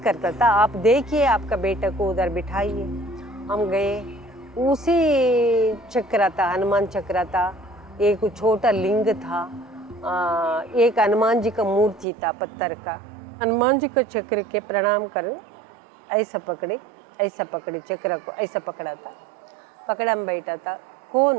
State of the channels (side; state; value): left; drops out; at 12.1 s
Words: करता था, आप देखिए आपका बेटा को उधर बिठाइए। हम गए, उसी चक्र था, हनुमान चक्र था, एक छोटा लिंग था, एक हनुमान जी का मूर्ति था पत्थर का। हनुमान जी को चक्र के प्रणाम कर ऐसा पकड़े, ऐसा पकड़े चक्र को, ऐसा पकड़ा था, पकड़ा में बैठा था। कौन